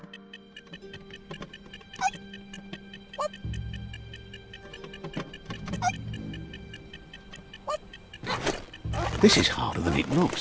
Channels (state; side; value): identical; both; correlation 1.00